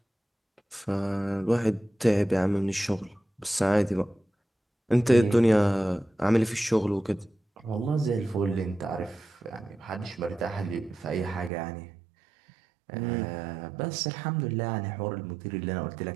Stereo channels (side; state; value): left; drops out; at 11.5 s